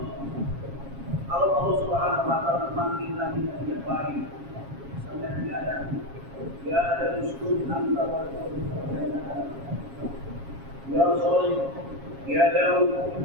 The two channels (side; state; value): left; late; 7.3 ms